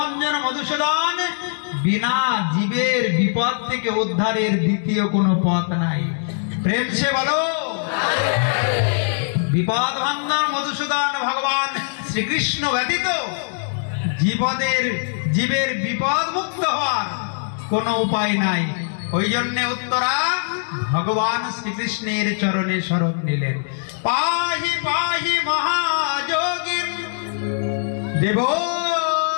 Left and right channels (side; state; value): right; silent; digital silence